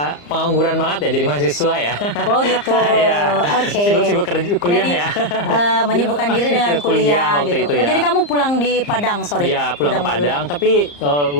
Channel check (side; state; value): right; late; 34 ms